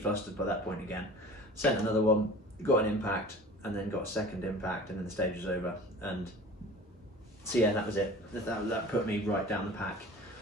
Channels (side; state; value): both; normal; correlation 0.41